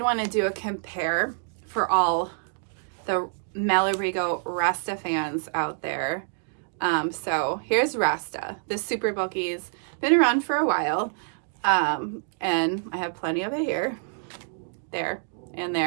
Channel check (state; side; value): silent; left; digital silence